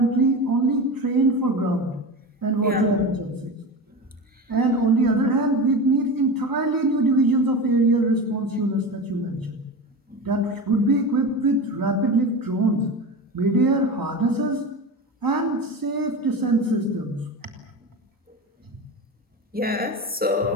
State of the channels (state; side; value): normal; both; correlation 0.26